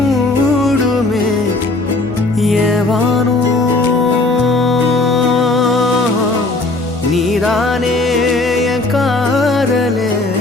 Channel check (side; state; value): right; quieter; 3.1 dB